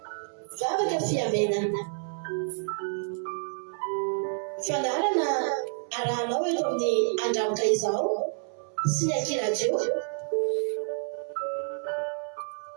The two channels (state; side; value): silent; left; 59 dB below the other